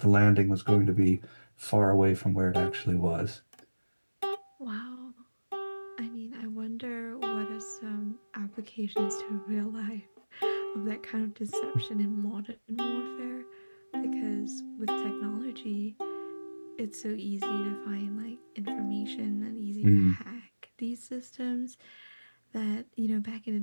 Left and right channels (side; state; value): both; inverted; correlation -1.00